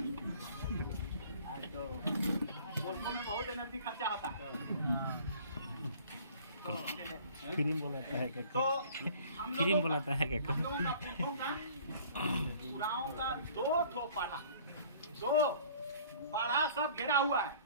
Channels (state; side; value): inverted; both; correlation -0.51